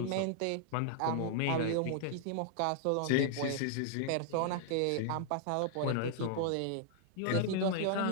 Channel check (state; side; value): different; both; correlation -0.01